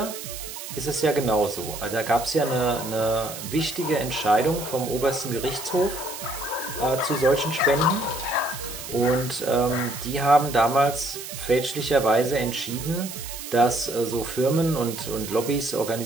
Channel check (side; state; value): right; noise; hiss, 10 dB below the sound